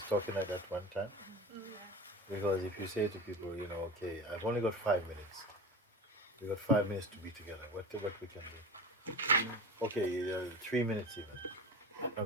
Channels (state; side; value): normal; both; correlation 0.31